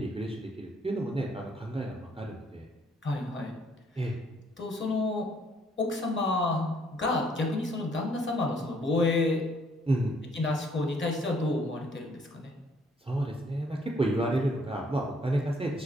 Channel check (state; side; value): normal; both; correlation 0.65